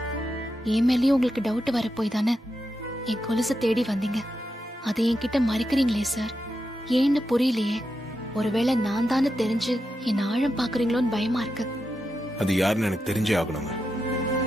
என் மேலயும் உங்களுக்கு டவுட் வர போய் தானே என் கொலுசை தேடி வந்தீங்க. அதை என்கிட்ட மறைக்கிறீங்களே சார், ஏன்னு புரியலையே. ஒருவேளை நான் தானே தெரிஞ்சு என் ஆழம் பாக்குறீங்களோன்னு பயமா இருக்கு. அது யாருன்னு எனக்கு தெரிஞ்சே ஆகணுங்க.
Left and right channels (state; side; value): normal; both; correlation 0.87